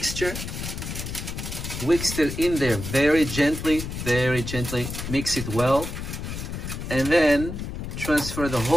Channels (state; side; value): noise; left; rumble, 6 dB below the sound